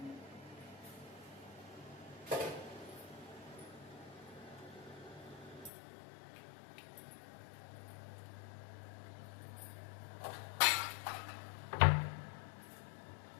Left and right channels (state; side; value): drops out; right; at 5.7 s